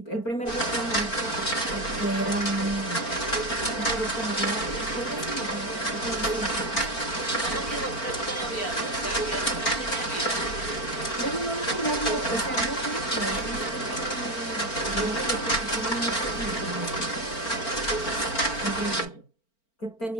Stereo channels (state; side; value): late; right; 4.4 ms